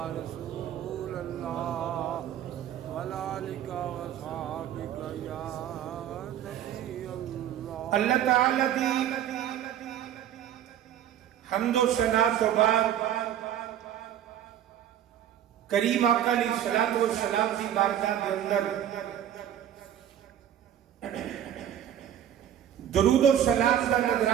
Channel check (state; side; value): quieter; left; 10.5 dB